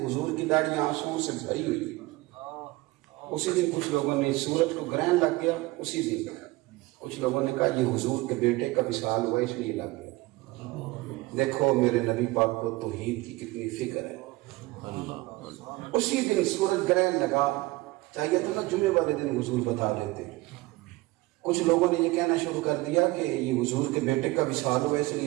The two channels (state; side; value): quieter; left; 20.6 dB